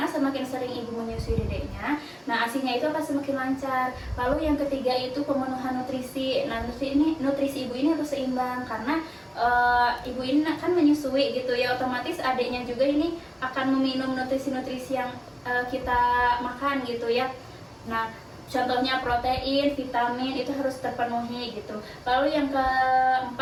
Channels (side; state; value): both; identical; correlation 1.00